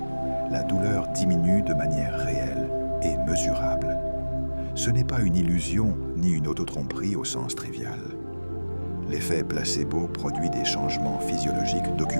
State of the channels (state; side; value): inverted; both; correlation -1.00